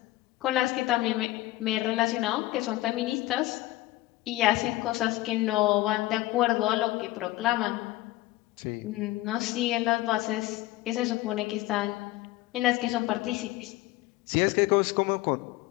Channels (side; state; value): right; quieter; 17.5 dB